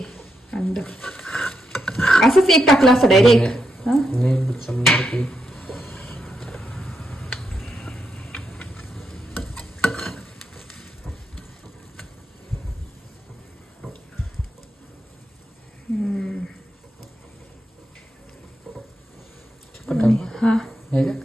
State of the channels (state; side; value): normal; both; correlation 0.83